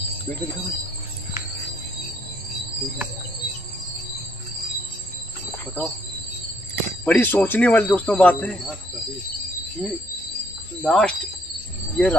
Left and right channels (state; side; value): normal; both; correlation 0.68